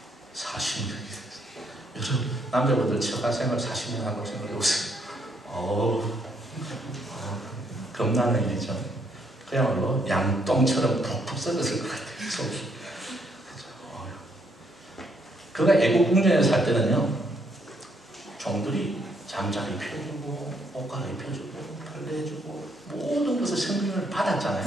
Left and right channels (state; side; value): normal; both; correlation 0.72